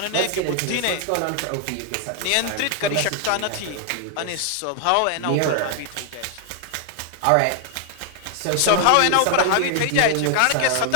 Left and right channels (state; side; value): different; both; correlation 0.00